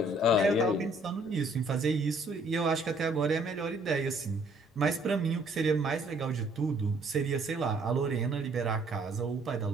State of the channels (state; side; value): normal; both; correlation 0.63